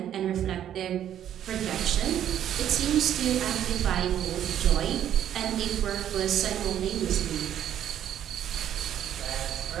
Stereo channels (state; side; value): quieter; left; 10.6 dB